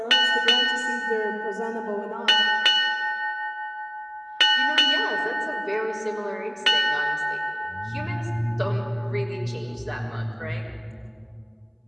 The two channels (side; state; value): both; identical; correlation 1.00